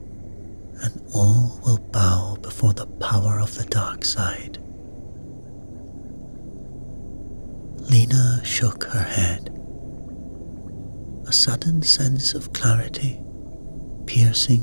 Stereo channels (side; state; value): both; inverted; correlation -1.00